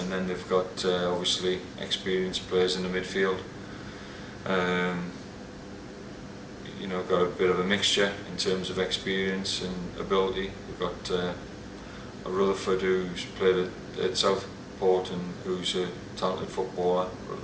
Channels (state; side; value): identical; both; correlation 1.00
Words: then they've got obviously experienced players in the midfield. Got a bit of a mixture in terms of experience and ability. We've got a Rutherford who's played at Southport and who's a talented footballer.